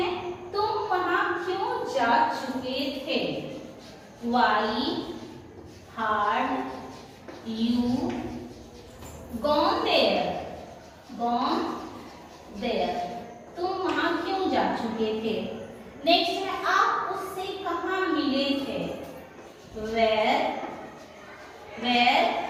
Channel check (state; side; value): identical; both; correlation 1.00